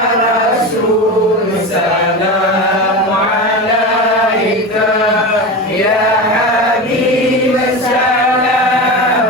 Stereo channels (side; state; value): both; normal; correlation 0.24